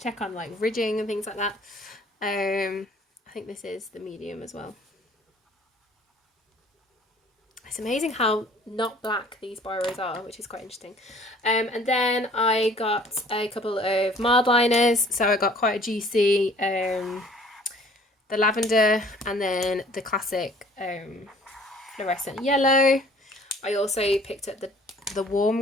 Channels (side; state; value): both; normal; correlation 0.54